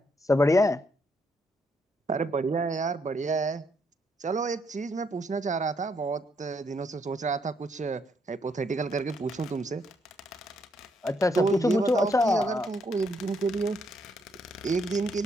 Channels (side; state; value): both; normal; correlation 0.74